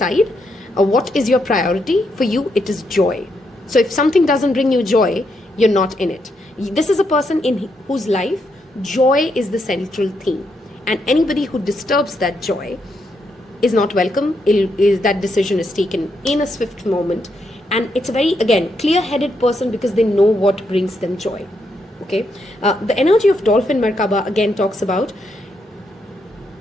What is your priority? For you, it is joy. So if something doesn't bring you joy, you're not in it. This is a person in whose life joy is the central theme, and anybody who disturbs that joy is not welcome. That decision is taken in a swift moment, and it's a very, again, clear-headed person because they know what brings them joy. Okay, the energy of Dolphin Merkaba again talks about,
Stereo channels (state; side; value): normal; both; correlation 0.79